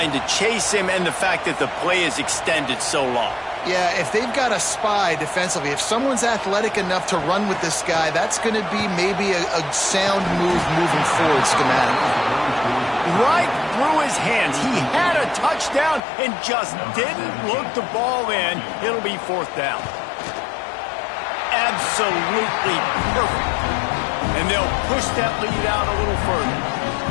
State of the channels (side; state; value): right; drops out; at 16.0 s